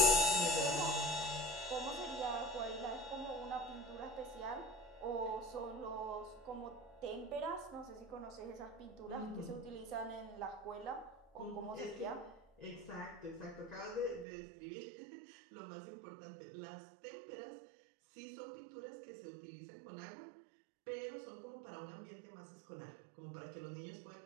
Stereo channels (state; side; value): drops out; left; at 14.2 s